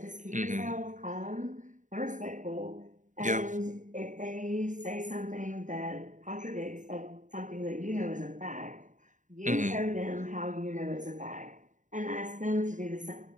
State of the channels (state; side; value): late; left; 0.36 ms